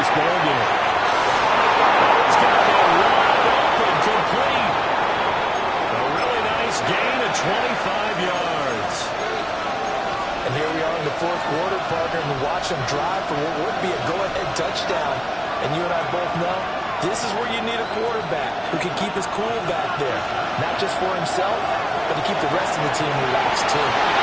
this ballgame. It's got to be wide open, complete. A really nice gain of 25 yards. And here we are in the fourth quarter, partner, and watch them drive for what would be a go-ahead touchdown. And you and I both know this is where you need a quarterback who can keep his cool back there. Not just for himself, but to keep the rest of the team relaxed, too.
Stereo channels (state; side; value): identical; both; correlation 1.00